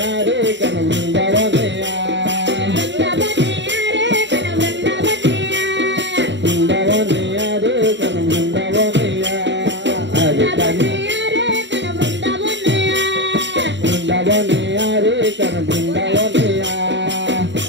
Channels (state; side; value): late; left; 0.52 ms